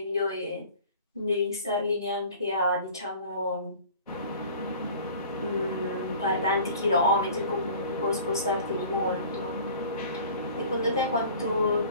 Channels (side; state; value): both; inverted; correlation -0.45